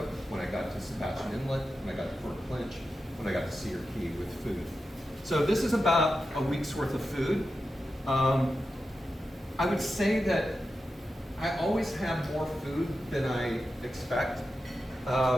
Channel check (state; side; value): normal; both; correlation 0.91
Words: when I got to Sebastian Inlet, when I got to Fort Clinch, when I got to Cedar Key with food. So this is about a week's worth of food. I would say that I always have more food than I expect,